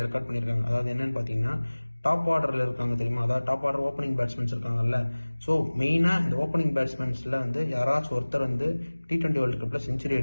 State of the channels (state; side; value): inverted; both; correlation -1.00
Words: ரெக்கார்ட் பண்ணியிருக்காங்க. அதாவது என்னன்னு பார்த்தீங்கன்னா டாப் ஆர்டரில் இருக்காங்க தெரியுமா, அதாவது டாப் ஆர்டர் ஓப்பனிங் பேட்ஸ்மேன்ஸ் இருக்காங்கல்ல. ஸோ மெயினாக இந்த ஓப்பனிங் பேட்ஸ்மேன்ஸில் வந்து யாராச்சும் ஒருத்தர் வந்து T20 வேர்ல்டு கப்பில் செஞ்சுரி